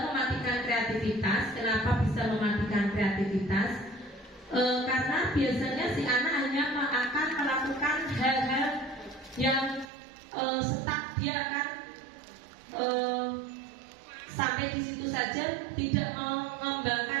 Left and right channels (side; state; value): left; drops out; at 9.9 s